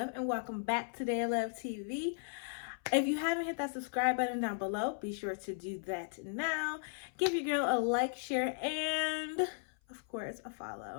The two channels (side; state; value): right; silent; 54 dB below the other